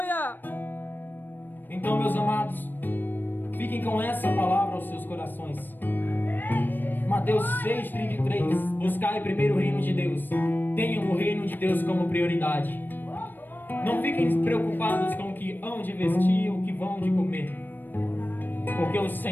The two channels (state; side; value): late; right; 0.092 ms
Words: Então, meus amados, fiquem com essa palavra aos seus corações. Mateus 6,33. Buscai primeiro o reino de Deus. Tenham o reino de Deus como prioridade. Não fiquem preocupados com o que hão de vestir, o que vão de comer, porque o